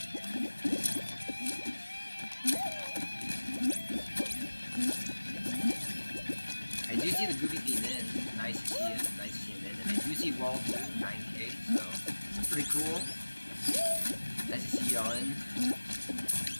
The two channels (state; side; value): inverted; both; correlation -1.00